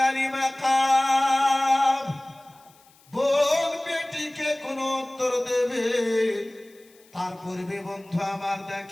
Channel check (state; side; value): noise; left; hiss, 29 dB below the sound